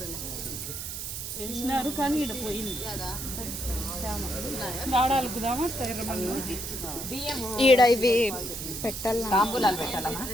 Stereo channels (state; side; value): noise; right; hiss, 6 dB below the sound